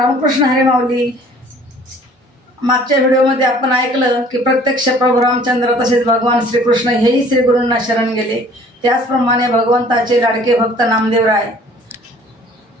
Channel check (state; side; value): normal; both; correlation 0.52